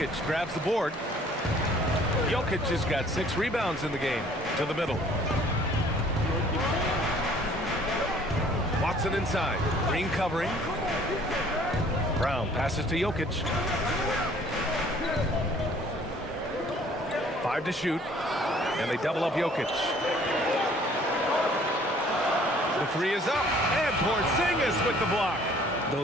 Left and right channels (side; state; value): both; normal; correlation 0.56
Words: grabs the board. Jokic has got 6 rebounds in the game. To the middle. Watson inside. Green covering. Brown passes to Jokic. 5 to shoot. And they double up Jokic. The 3 is up. And Porzingis with the block.